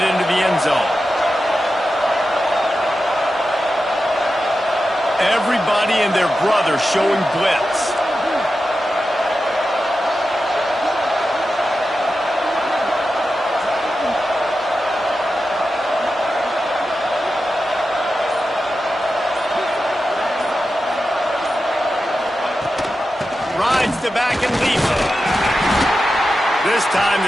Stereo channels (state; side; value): normal; both; correlation 0.91